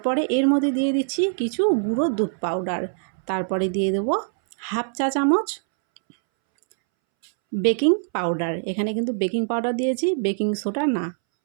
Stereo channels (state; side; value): silent; left; 63 dB below the other